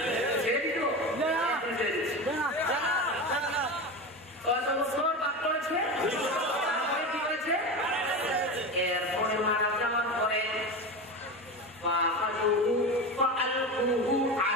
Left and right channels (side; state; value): both; normal; correlation 0.24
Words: ছেড়ে দিত কত বছর পাপ করেছে, তারপরে কি হয়েছে? এরপরে মারা যাওয়ার পরে